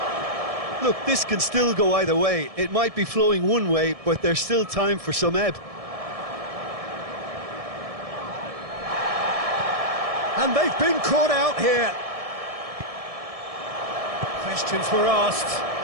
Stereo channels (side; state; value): left; late; 1.7 ms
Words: Look, this can still go either way. It might be flowing one way, but there's still time for some ebb. And they've been caught out here. Questions were asked,